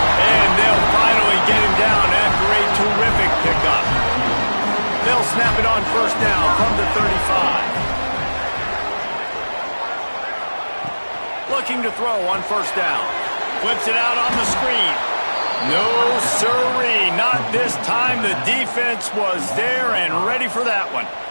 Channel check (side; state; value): both; inverted; correlation -1.00